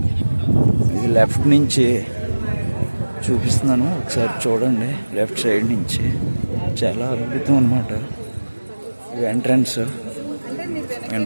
ఇది లెఫ్ట్ నుంచి చూపిస్తున్నాను, ఒకసారి చూడండి. లెఫ్ట్ సైడ్ నుంచి చాలా అద్భుతం అన్నమాట. ఇది ఎంట్రన్స్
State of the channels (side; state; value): both; inverted; correlation -1.00